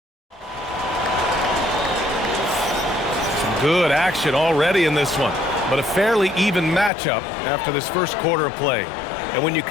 Good action already in this one, but a fairly even matchup after this first quarter of play. And when you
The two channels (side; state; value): right; drops out; at 6.9 s